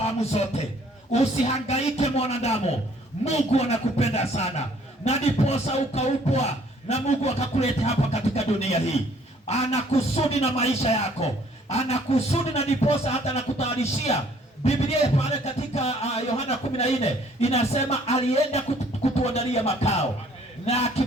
zote. Usihangaike mwanadamu, Mungu anakupenda sana, na ndiposa ukaupwa na Mungu akakuleta hapa katika dunia hii. Anakusudi na maisha yako, anakusudi, na ndiposa hata anakutayarishia. Biblia pale katika Yohana 14 inasema alienda kutuandalia makao, na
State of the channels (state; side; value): normal; both; correlation 0.60